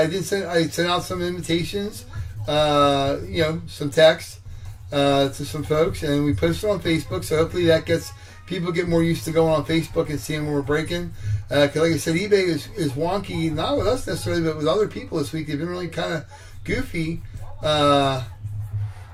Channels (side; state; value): both; identical; correlation 1.00